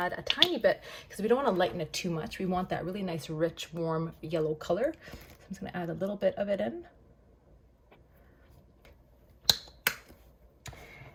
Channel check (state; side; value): identical; both; correlation 1.00